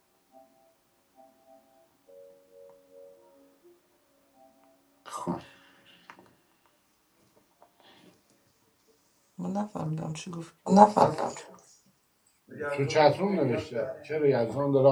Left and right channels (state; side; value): identical; both; correlation 1.00